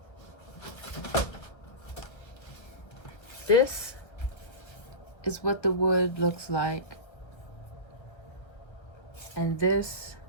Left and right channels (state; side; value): late; right; 1.4 ms